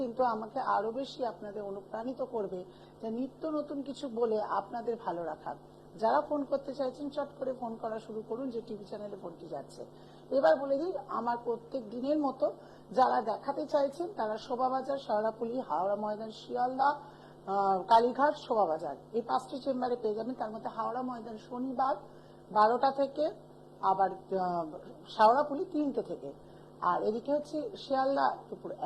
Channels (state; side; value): identical; both; correlation 1.00